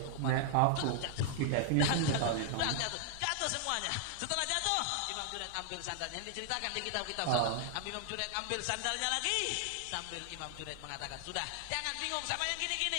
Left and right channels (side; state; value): both; different; correlation 0.00